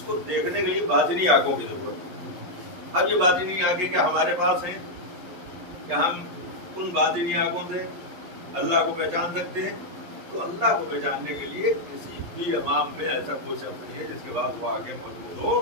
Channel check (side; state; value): left; late; 11 ms